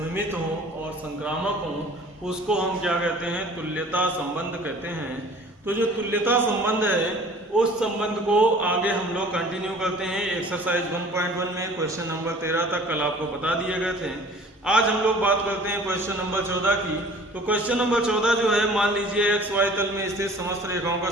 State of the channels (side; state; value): both; normal; correlation 0.48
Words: हों और संक्रामक हों, उसको हम क्या कहते हैं? तुल्यता संबंध कहते हैं। तो जो तुल्यता संबंध है उस संबंध को आगे हम लोग कंटिन्यू करते हैं। एक्सरसाइज 1.1 में क्वेश्चन नंबर 13 तक कल आपको बता दिए गए थे। आज हम लोग बात करते हैं क्वेश्चन नंबर 14 की। तो क्वेश्चन नंबर 14 जो है, मान लीजिए एक्स वाई तल में स्थित समस्त रेखाओं का